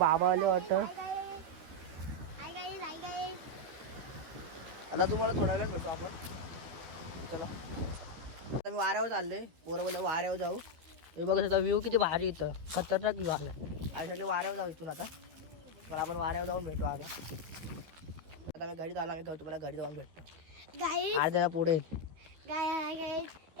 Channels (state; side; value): late; left; 12 ms